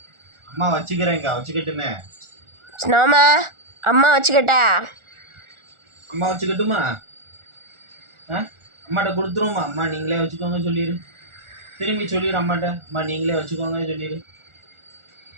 அம்மா வச்சுக்கிறேன்க்கா, வச்சுக்கிட்டுமே. ஸ்னோமா அம்மா வச்சுக்கிட்டா. அம்மா வச்சுக்கட்டுமா? அம்மாட்ட கொடுத்துருவோமா? அம்மா நீங்களே வச்சுக்கோங்க சொல்லிடு. திரும்பி சொல்லிடு அம்மாட்ட, அம்மா நீங்களே வச்சுக்கோங்க சொல்லிடு.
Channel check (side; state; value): left; late; 1.4 ms